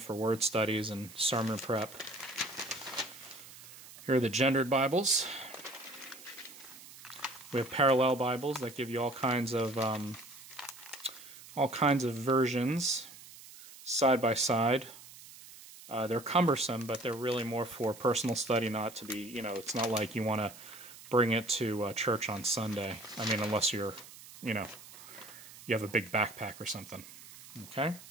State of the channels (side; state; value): right; noise; hiss, 18 dB below the sound